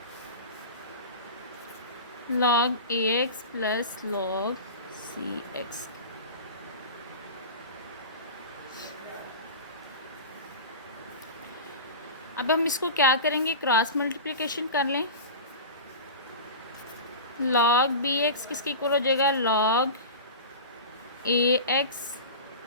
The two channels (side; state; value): both; inverted; correlation -0.31